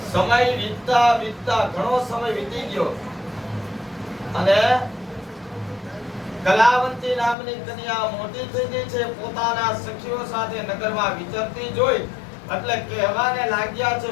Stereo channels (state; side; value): drops out; right; at 7.4 s